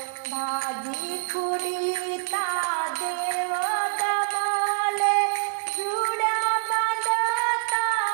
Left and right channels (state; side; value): silent; left; digital silence